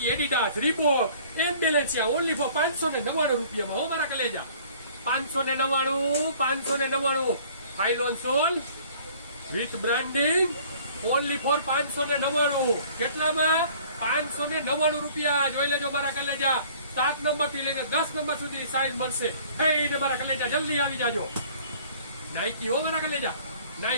Adidas, Reebok, and Balenciaga only for 599 રૂપિયામાં. હો મારા કલેજા 599 phylon sole with branding only for 599. કેટલામાં? 599 રૂપિયા. જોઈ લેજો મારા કલેજા. 7 નંબર થી લઈને 10 નંબર સુધી સાઈઝ મળશે. ને મારા કલેજા જલ્દી આવી જાજો. નાઇકી હો મારા કલેજા,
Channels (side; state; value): both; inverted; correlation -0.53